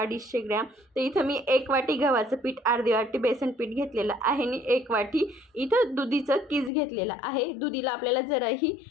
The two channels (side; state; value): right; drops out; at 6.7 s